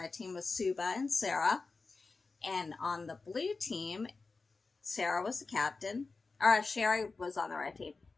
team was Suba and Sarah. And on the blue team, Sarah was the captain. Or Sherry was on the red team.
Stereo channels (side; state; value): right; quieter; 4.0 dB